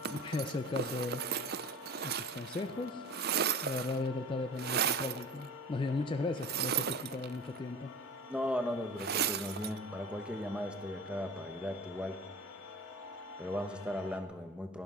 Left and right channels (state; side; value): normal; both; correlation 0.38